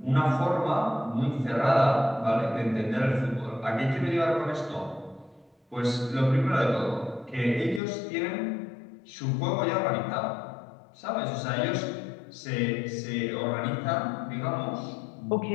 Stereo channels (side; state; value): right; drops out; at 7.8 s